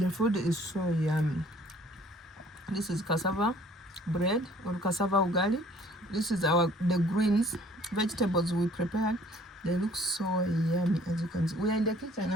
food is so yummy. This is cassava bread or cassava ugali. This is the greens, vegetables we prepared. They look so yummy, as you can see. We are in the kitchen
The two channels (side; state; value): both; normal; correlation 0.56